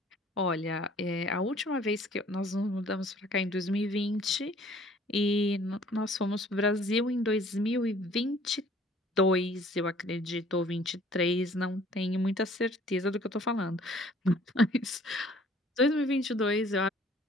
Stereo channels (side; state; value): both; normal; correlation 0.56